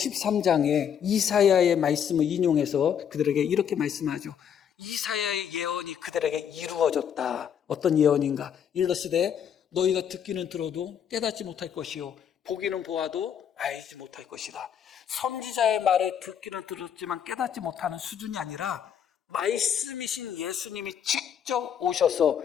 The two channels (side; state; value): right; quieter; 8.5 dB